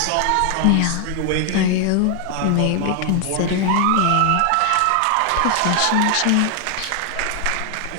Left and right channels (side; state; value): both; different; correlation 0.00